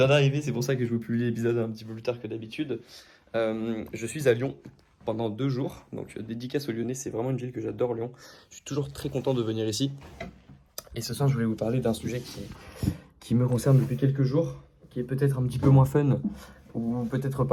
d'arriver, c'est pour ça que je vous publie l'épisode un petit peu plus tard que d'habitude. Je suis à Lyon pendant 2 jours, donc dédicace aux Lyonnais, c'est vraiment une ville que j'adore, Lyon. Je suis toujours très content de venir ici. Et ce soir, je voulais vous parler d'un sujet qui me concerne depuis quelques jours, qui est peut-être un petit peu moins fun, ou peut-être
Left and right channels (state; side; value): identical; both; correlation 1.00